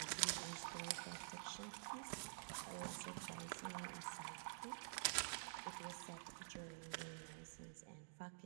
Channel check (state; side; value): silent; left; digital silence